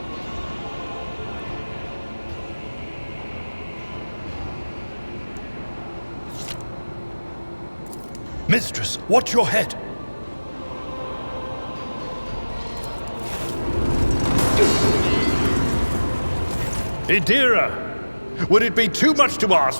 Mistress, watch your head. Idira, would it be too much to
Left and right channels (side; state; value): both; inverted; correlation -1.00